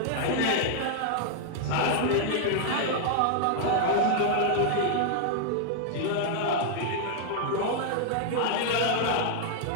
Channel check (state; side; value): different; both; correlation 0.00